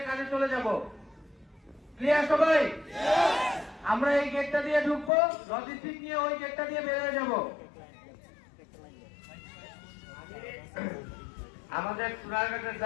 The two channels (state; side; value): drops out; right; at 5.1 s